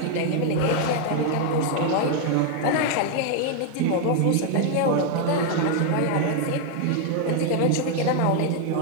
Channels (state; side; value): different; both; correlation 0.00